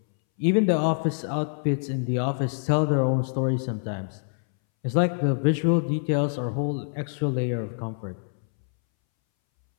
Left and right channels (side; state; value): right; silent; 61 dB below the other